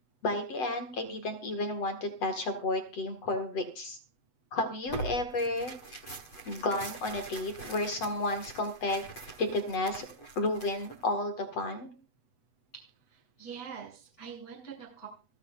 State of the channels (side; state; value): right; late; 8.0 ms